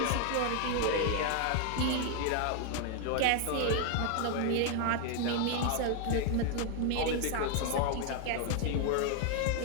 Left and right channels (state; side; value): different; both; correlation 0.00